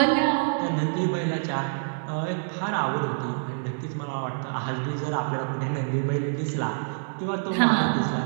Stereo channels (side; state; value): left; silent; digital silence